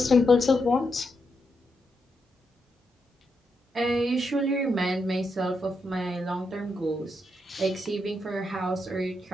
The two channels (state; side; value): normal; both; correlation 0.82